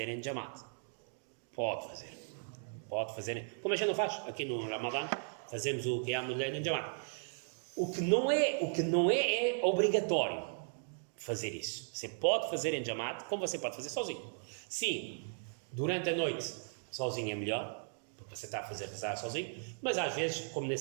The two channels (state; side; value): silent; left; digital silence